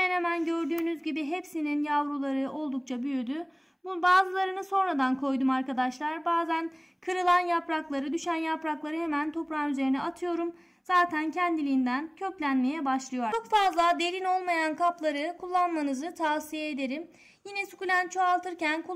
hemen gördüğünüz gibi hepsinin yavruları oldukça büyüdü. Bazılarını sonradan koydum arkadaşlar. Bazen kırılan yaprakları, düşen yaprakları hemen toprağın üzerine atıyorum. Zaten kendiliğinden köklenmeye başlıyor. Çok fazla derin olmayan kapları kullanmanızı tavsiye ederim. Yine sukulent çoğaltırken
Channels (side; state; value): both; identical; correlation 1.00